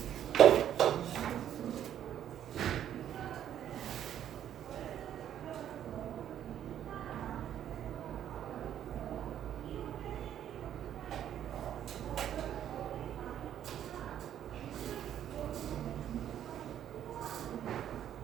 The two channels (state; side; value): quieter; left; 10.5 dB